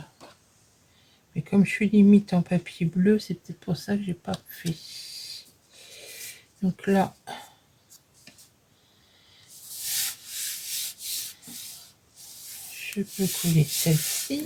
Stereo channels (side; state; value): both; identical; correlation 1.00